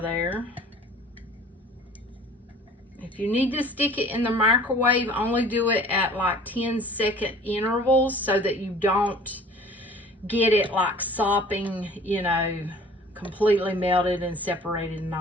there. If you need to stick it in the microwave, only do it at like 10-second intervals so that you don't get it like sopping, you know, completely melted and separated and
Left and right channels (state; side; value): normal; both; correlation 0.48